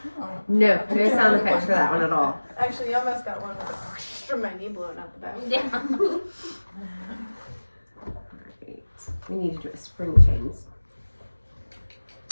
No, no sound effects for that one at all. Actually, you almost got one from my knee blowing out the back. Yeah. Right. We need to do a spring chains.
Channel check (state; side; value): inverted; both; correlation -1.00